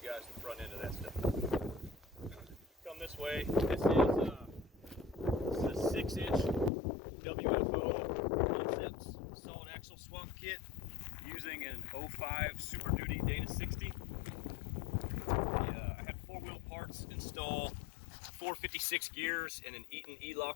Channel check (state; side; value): drops out; right; at 6.7 s